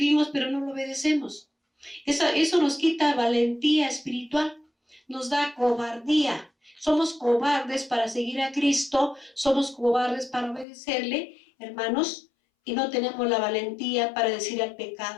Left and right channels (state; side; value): drops out; right; at 10.7 s